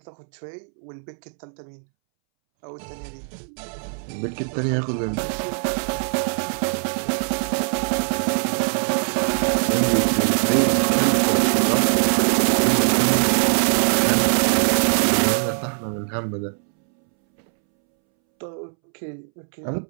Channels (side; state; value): left; silent; 64 dB below the other